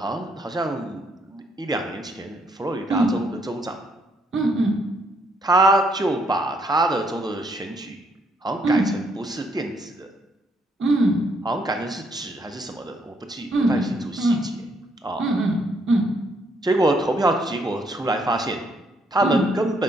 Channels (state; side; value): normal; both; correlation 0.71